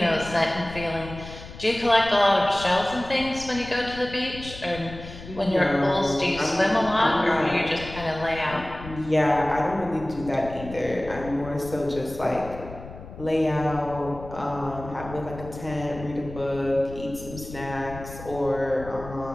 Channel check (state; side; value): noise; left; rumble, 14 dB below the sound